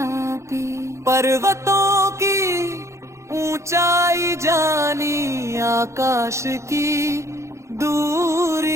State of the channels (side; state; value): left; late; 0.14 ms